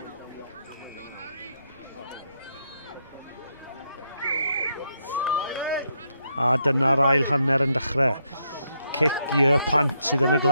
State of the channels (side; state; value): both; inverted; correlation -0.78